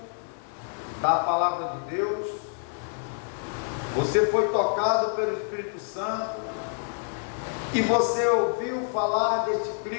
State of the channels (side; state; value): right; silent; 60 dB below the other